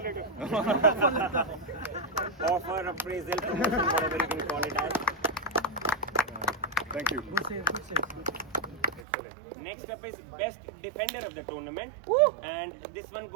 Offer, appraisal, promotion, whatever you can call it as. Thank you. Next up is best defender of the tournament, and this one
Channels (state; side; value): drops out; left; at 9.1 s